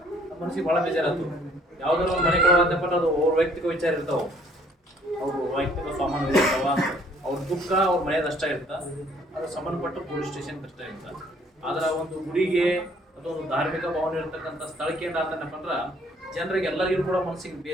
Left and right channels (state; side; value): normal; both; correlation 0.61